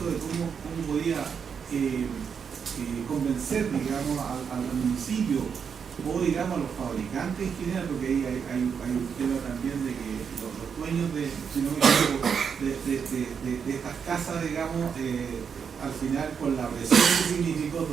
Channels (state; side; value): quieter; left; 6.7 dB